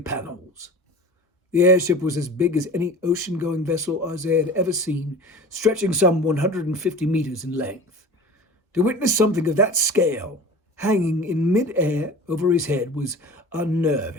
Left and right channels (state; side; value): normal; both; correlation 0.38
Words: The airship was as big as any ocean-going vessel Isaiah had ever seen, stretching some 150 meters in length. To witness something of that scale hanging in mid-air over his head was